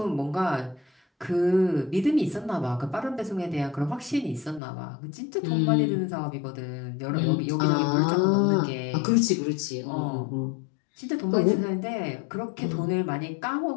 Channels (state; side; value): drops out; right; at 4.6 s